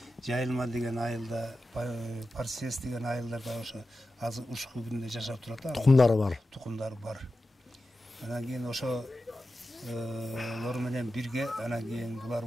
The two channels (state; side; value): normal; both; correlation 0.92